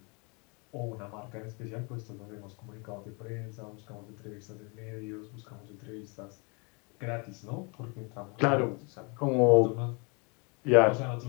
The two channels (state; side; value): quieter; right; 32.1 dB